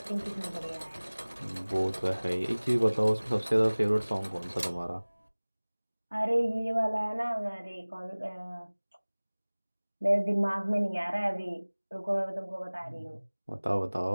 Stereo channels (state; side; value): inverted; both; correlation -1.00